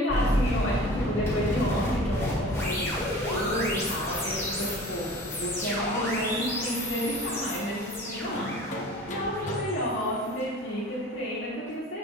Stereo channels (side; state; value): both; normal; correlation 0.41